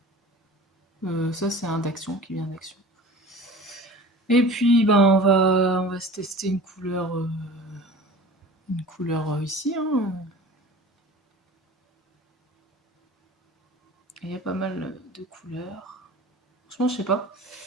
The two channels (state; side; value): normal; both; correlation 0.40